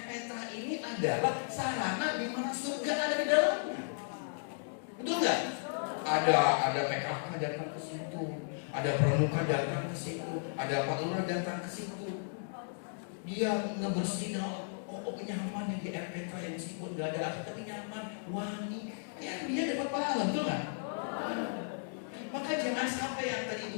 Petra ini adalah sarana di mana surga ada di dalamnya. Betul nggak? Ada PKK datang ke situ, ada pramuka datang ke situ, ada Pak Lurah datang ke situ. Dia ngebersihin, nyaman ya di Air Petra yang meskipun nggak ada asap tapi nyaman, wangi. Ya dia dapat pahala, betul nggak? Maka jangan sampai yang tadi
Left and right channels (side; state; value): right; silent; digital silence